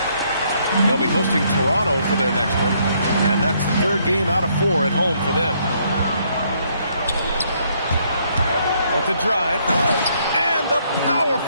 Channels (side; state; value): both; inverted; correlation -0.70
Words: They'll be hosting Toronto for their next one. And that's the 3rd game out of 4 at home for them. With the drive. And the